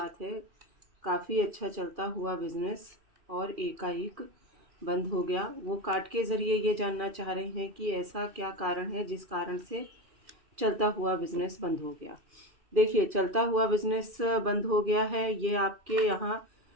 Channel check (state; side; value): late; left; 2.4 ms